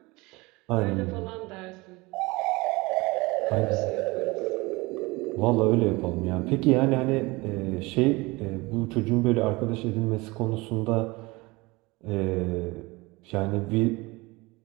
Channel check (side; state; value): left; quieter; 23.4 dB